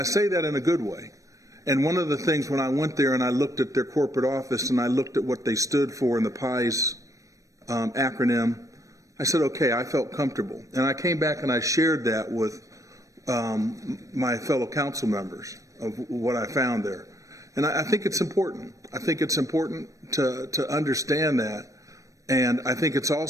say that in a good way. And one of the things when I went there and I looked at their corporate office and I looked at what they stood for in the PIES acronym, I said, okay, I felt comfortable. And I came back and I shared that with my fellow council members of what I found there. And I think it's important. I think it's important to understand that And I think it's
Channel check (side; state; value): left; late; 0.16 ms